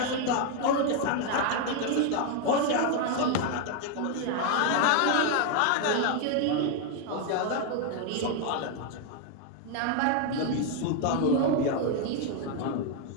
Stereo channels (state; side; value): different; both; correlation 0.00